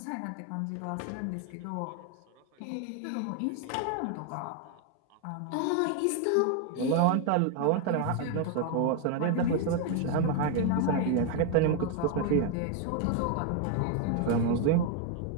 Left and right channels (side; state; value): both; different; correlation 0.01